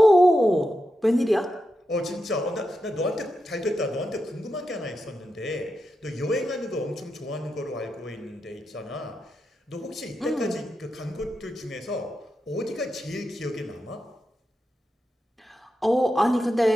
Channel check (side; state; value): both; normal; correlation 0.88